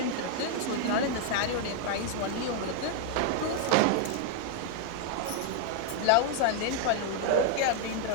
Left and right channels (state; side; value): different; both; correlation 0.00